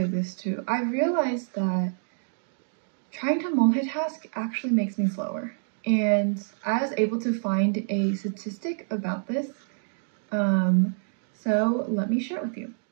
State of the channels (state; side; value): silent; left; digital silence